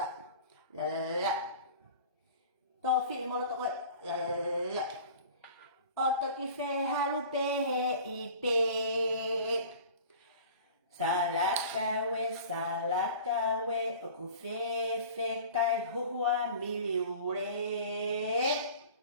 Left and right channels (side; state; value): both; inverted; correlation -0.41